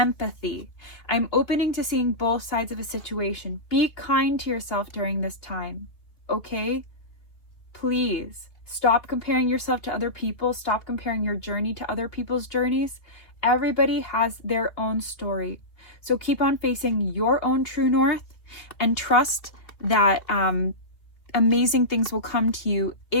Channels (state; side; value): late; right; 2.9 ms